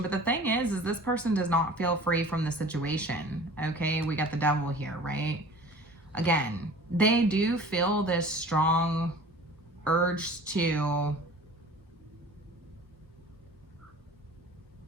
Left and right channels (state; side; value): normal; both; correlation 0.43